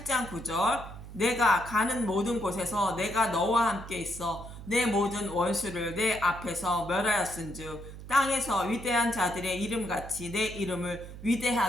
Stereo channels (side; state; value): right; noise; hum, 13 dB below the sound